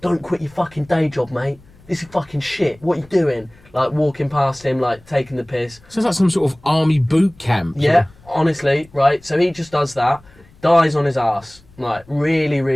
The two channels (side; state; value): left; noise; rumble, 27 dB below the sound